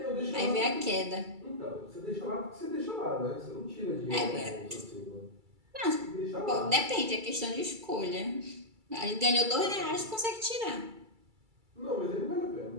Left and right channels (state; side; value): late; left; 2.3 ms